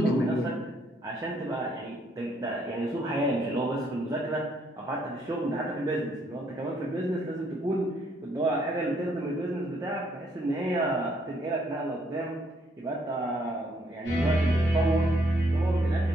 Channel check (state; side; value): normal; both; correlation 0.69